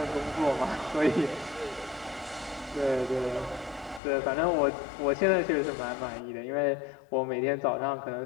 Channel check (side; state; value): right; drops out; at 4.0 s